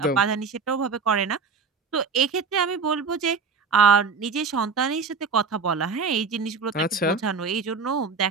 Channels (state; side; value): quieter; left; 5.1 dB